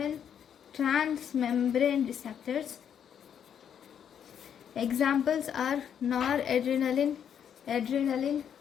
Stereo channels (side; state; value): right; quieter; 8.6 dB